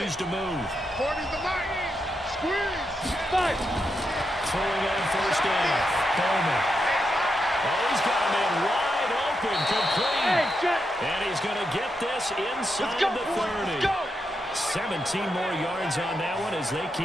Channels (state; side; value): normal; both; correlation 0.84